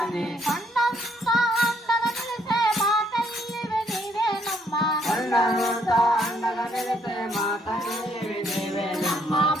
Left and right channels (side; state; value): both; normal; correlation 0.69